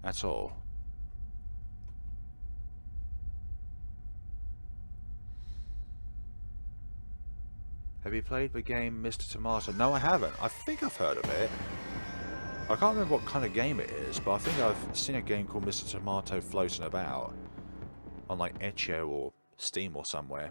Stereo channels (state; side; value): inverted; both; correlation -1.00